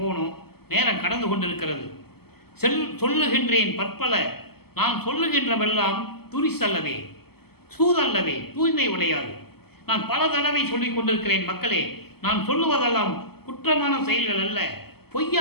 போகணும். நேரம் கடந்து கொண்டிருக்கிறது. சொல்லுகின்றேன் பற்பல, நான் சொல்லுகின்றவெல்லாம் துரிசல்லவே, சூதல்லவே, தூய்மை உடையாது. நான் பல தடவை சொல்லிக் கொண்டிருக்கிறேன் மக்களே, நான் சொல்லுவதெல்லாம் குற்றமான செயல்கள் அல்ல,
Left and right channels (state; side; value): late; right; 0.96 ms